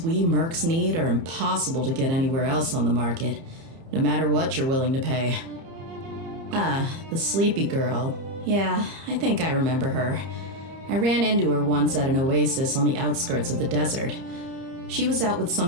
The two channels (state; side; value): late; left; 30 ms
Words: we mercs need are impossible to get anywhere else on the market, no matter what you're willing to pay. The sleepy girl. Yeah, I think I remember her. I ran into her once at an oasis on the outskirts of the desert. She was out with